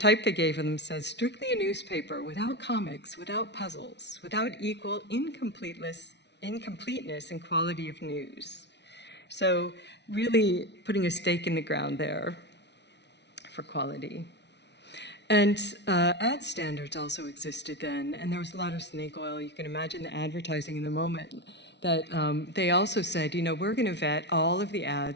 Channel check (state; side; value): late; right; 0.50 ms